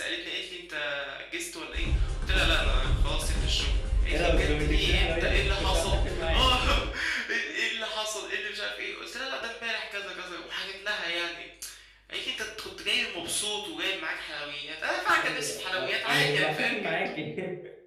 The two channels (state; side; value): identical; both; correlation 1.00